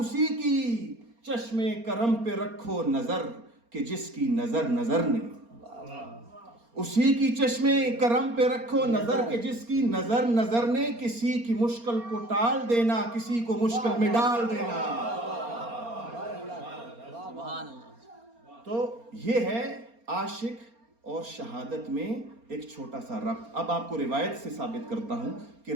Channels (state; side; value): late; left; 4.3 ms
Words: کی چشم کرم پہ رکھو نظر کہ جس کی نظر نظر نے. اسی کی چشم کرم پہ رکھو نظر کہ جس کی نظر نظر نے. کسی کی مشکل کو ٹال دینا, کسی کو مشکل میں ڈال دینا. سبحان اللہ. تو یہ ہے عاشق اور شہادت میں ایک چھوٹا سا ربط. اب آپ کو روایت سے ثابت کرتا ہوں کہ